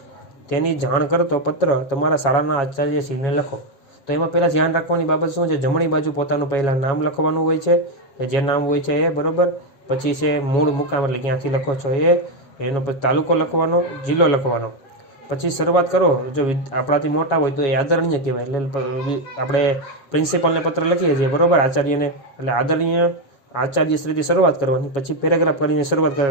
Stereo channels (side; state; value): right; late; 7.3 ms